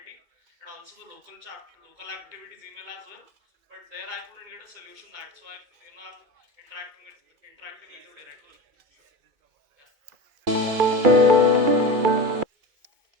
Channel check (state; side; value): late; left; 2.6 ms